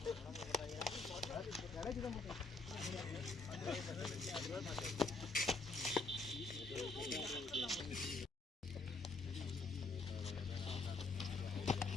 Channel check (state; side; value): quieter; right; 3.6 dB